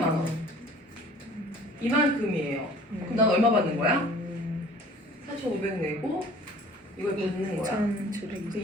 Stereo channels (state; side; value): normal; both; correlation 0.49